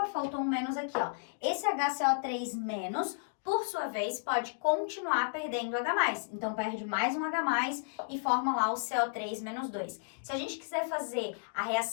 faltou um menos aqui, ó. Esse HCO3- por sua vez, pode continuar perdendo H+. Então, perde mais um H+, e forma lá o CO3-2. Se a gente quiser fazer a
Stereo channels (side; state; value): right; silent; digital silence